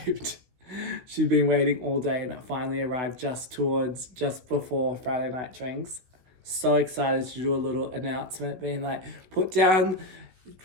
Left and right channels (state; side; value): late; left; 16 ms